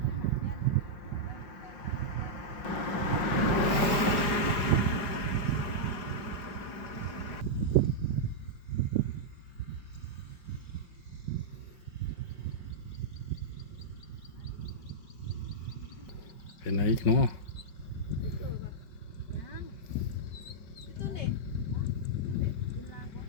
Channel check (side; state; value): right; late; 5.4 ms